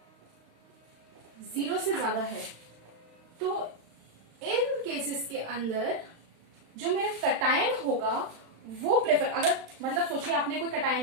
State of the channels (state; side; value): late; left; 35 ms